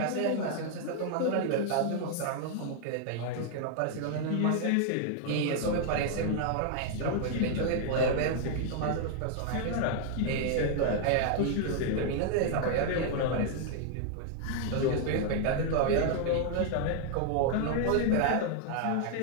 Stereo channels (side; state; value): both; different; correlation 0.00